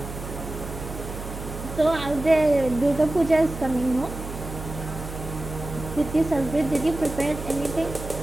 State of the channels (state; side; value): noise; right; hum, 9 dB below the sound